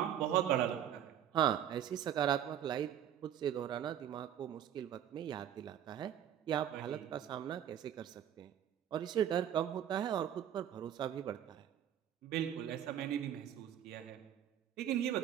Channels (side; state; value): left; quieter; 10.2 dB